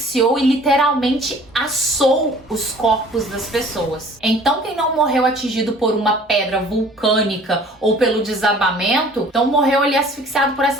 e literalmente assou os corpos das pessoas. Então, quem não morreu atingido por uma pedra vulcânica ou pelo desabamento, então morreu ali asfixiado por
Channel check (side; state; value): both; normal; correlation 0.51